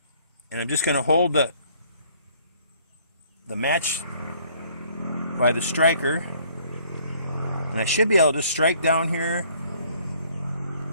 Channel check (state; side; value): inverted; both; correlation -0.60